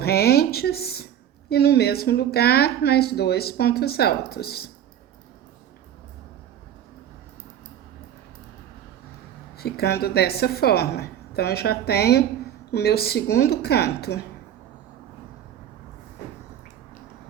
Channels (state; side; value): quieter; left; 10.2 dB